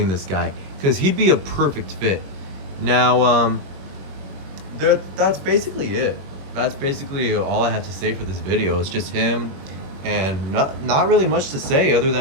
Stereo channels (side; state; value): left; late; 21 ms